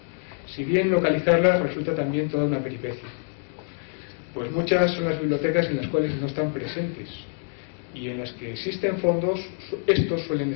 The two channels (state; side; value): silent; right; 61 dB below the other